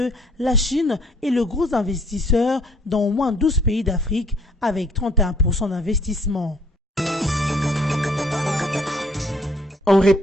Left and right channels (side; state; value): both; normal; correlation 0.61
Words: la Chine est le gros investisseur dans au moins 12 pays d'Afrique avec 31% d'investissement. En